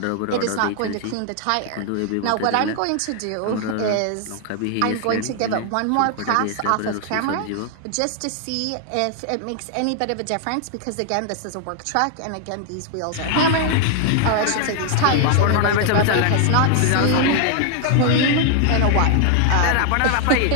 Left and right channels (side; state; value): both; different; correlation 0.00